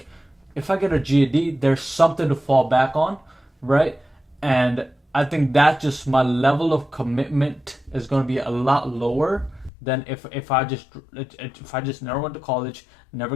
if I get a GED, there's something to fall back on, right? And I think that just my level of commitment is going to be a lot lower than if I just never went to college,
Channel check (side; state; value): right; drops out; at 9.7 s